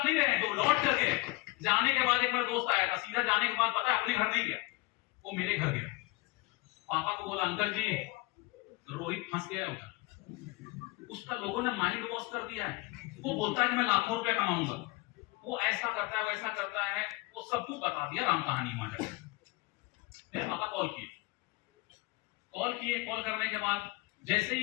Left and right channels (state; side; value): quieter; right; 22.7 dB